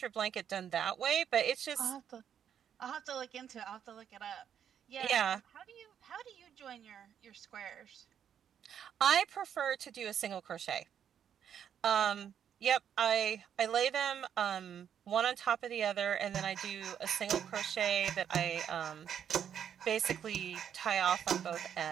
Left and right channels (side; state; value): left; quieter; 8.8 dB